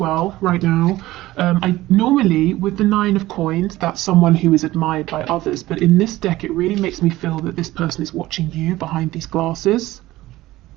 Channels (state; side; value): quieter; left; 17.0 dB